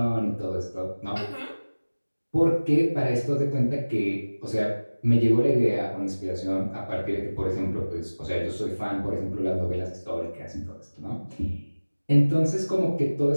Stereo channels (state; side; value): inverted; both; correlation -1.00